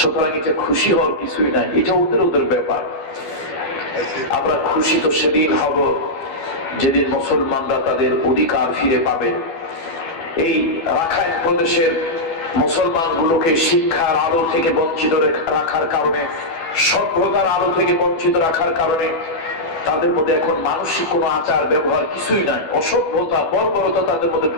এটা খুশি হওয়ার কিছুই নাই, এটা ওদের ওদের ব্যাপার। আমরা খুশি তো সেদিন হব যেদিন মুসলমানরা তাদের অধিকার ফিরে পাবে। এই রাখাইন প্রদেশের মুসলমানগুলোকে শিক্ষার আলো থেকে বঞ্চিত রাখার কারণে, সভ্যতার আলো থেকে বঞ্চিত রাখার কারণে তাদের মধ্যে এখন মানসিক কোনো আচার ব্যবহার কিছুই নাই। অসভ্যতা, বর্বরতা তাদের মধ্যে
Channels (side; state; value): right; late; 12 ms